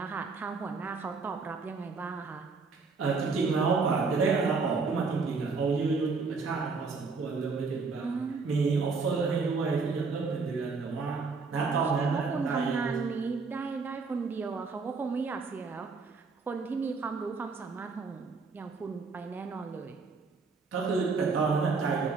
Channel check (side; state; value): left; quieter; 4.5 dB